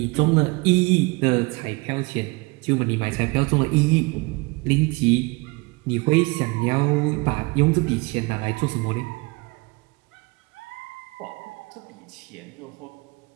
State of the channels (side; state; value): left; quieter; 26.8 dB